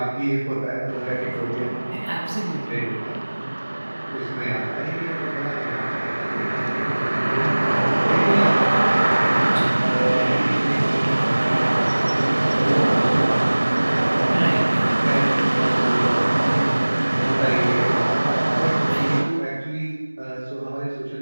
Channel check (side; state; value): both; inverted; correlation -1.00